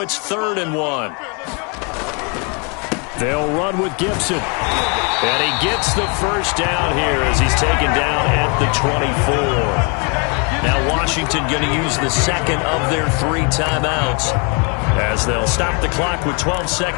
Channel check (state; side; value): quieter; right; 34.2 dB